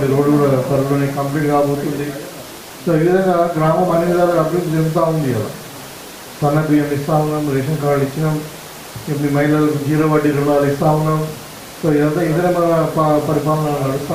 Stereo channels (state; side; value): identical; both; correlation 1.00